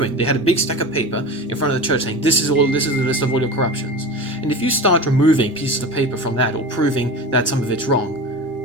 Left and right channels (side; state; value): both; normal; correlation 0.31